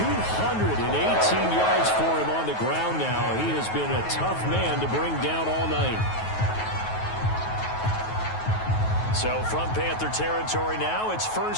yards for him on the ground now. He has been a tough man to bring down all night. So from Panther territory now, it's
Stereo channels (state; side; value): late; right; 9.3 ms